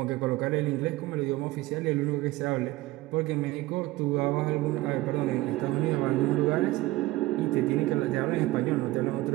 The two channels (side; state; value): left; quieter; 18.3 dB